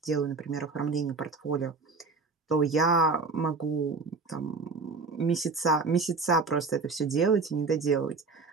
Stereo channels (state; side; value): quieter; left; 4.1 dB